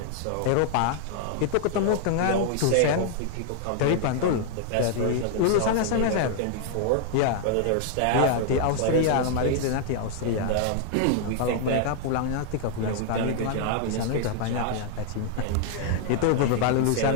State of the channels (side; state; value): both; different; correlation -0.01